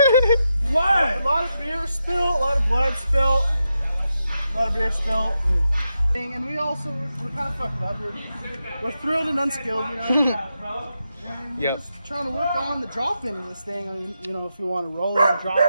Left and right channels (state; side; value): inverted; both; correlation -0.86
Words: What? A lot of beer spilled, a lot of blood spilled, a lot of beer spilled. And we also, we're kind of fucking up. We're thrilled and unskilled, you know. And we're just trying to work on the drop in of this thing. I mean, you know, if you want to roll it and